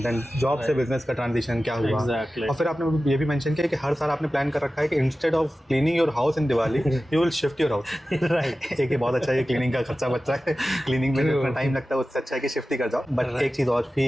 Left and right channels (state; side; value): normal; both; correlation 0.95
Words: देन जॉब से बिजनेस का ट्रांजिशन क्या हुआ। और फिर आपने ये भी मेंशन किया कि हर साल आपने प्लान कर रखा है कि instead of cleaning your house in Diwali you will shift your house. Right. एक ये बहुत अच्छा है, क्लीनिंग का खर्चा बच रहा है, क्लीनिंग में जितना टाइम लगता है उससे अच्छा है कि शिफ्ट ही कर जाओ। बट एक चीज़ और